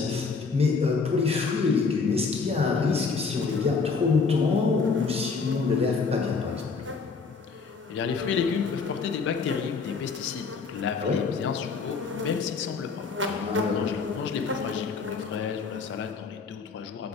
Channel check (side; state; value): right; quieter; 4.9 dB